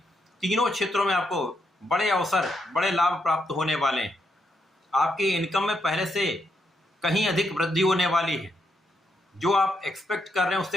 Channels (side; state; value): both; normal; correlation 0.79